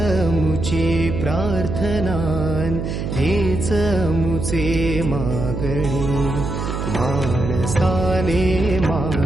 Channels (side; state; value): right; noise; hum, 4 dB below the sound